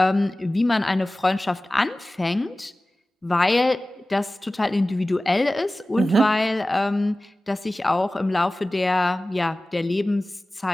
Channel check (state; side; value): normal; both; correlation 0.97